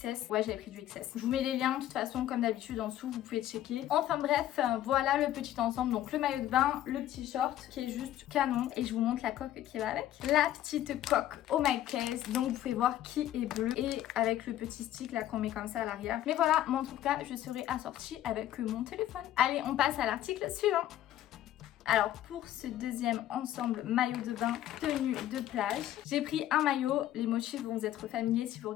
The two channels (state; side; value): quieter; right; 12.7 dB